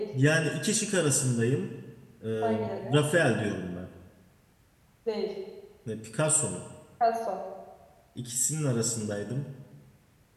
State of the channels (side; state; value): both; identical; correlation 1.00